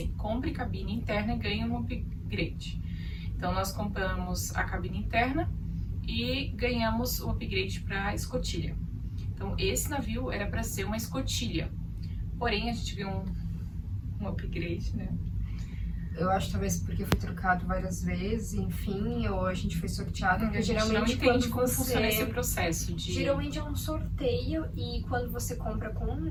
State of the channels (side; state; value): both; identical; correlation 1.00